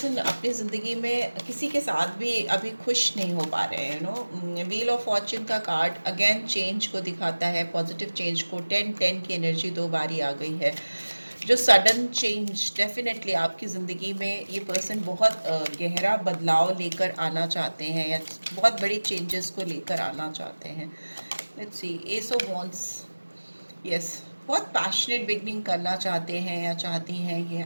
अपनी ज़िंदगी में किसी के साथ भी अभी खुश नहीं हो पा रहे हैं। व्हील ऑफ फॉर्च्यून का कार्ड अगेन चेंज को दिखाता है, पॉजिटिव चेंज को। 10-10 की एनर्जी 2 बारी आ गई है, जो सडन चेंज डेफिनेटली आपकी ज़िंदगी में ये पर्सन बहुत गहरा बदलाव लेकर आना चाहते हैं, या बहुत बड़ी चेंजेस को लेकर आना चाहते हैं। Let's see, S of wands, yes, बहुत पैशनेट बिगनिंग करना चाहते हैं या चाहती हैं ये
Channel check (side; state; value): both; inverted; correlation -1.00